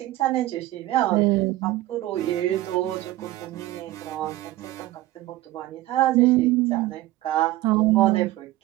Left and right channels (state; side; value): quieter; left; 16.4 dB